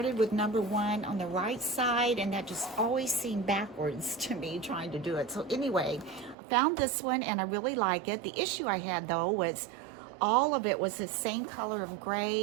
with number 1 on the right side, and that just always seemed backwards to me trying to do it. So anyway, found this one and I really like it. The issue I had though was all of it was the same color of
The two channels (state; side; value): drops out; left; at 6.4 s